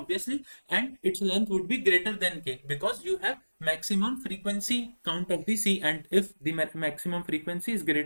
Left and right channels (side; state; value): both; inverted; correlation -1.00